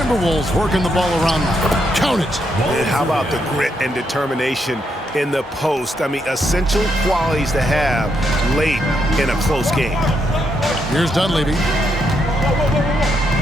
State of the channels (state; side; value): normal; both; correlation 0.78